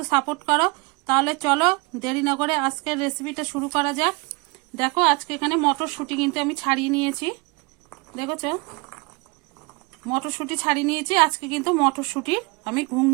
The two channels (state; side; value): quieter; left; 27.2 dB